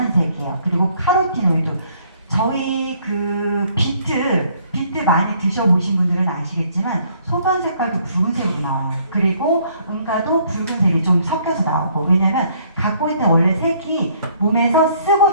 그리고 카로티노이드. 저희 그 비트 많이 드셔보신 분들은 아시겠지만 소변 색깔도 붉은색이 나와요. 그리고 응가도 붉은색이 좀 섞여서 나오고 왜냐면 갖고 있는 원래 색이 몸에서 쓰고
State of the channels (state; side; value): inverted; both; correlation -0.63